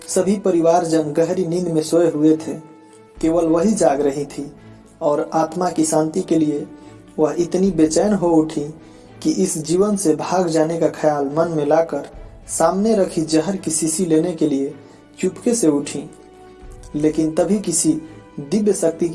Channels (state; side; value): identical; both; correlation 1.00